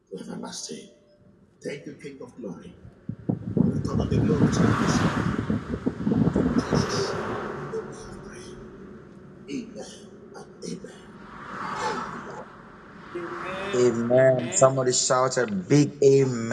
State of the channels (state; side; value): identical; both; correlation 1.00